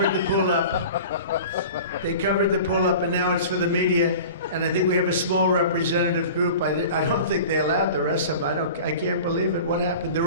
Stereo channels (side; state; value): both; inverted; correlation -0.39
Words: the pool up. They covered the pool up, and now it's for the media. And I think we have a small representative group. I don't think they allowed the rest of them. I can't believe it. What happened?